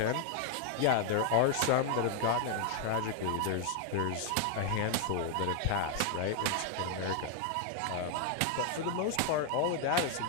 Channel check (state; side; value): different; both; correlation 0.00